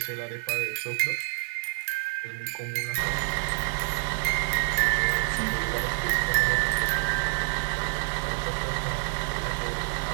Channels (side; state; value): left; silent; digital silence